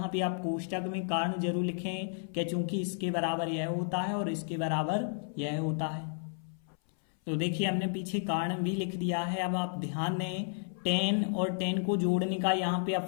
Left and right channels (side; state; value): right; silent; 56 dB below the other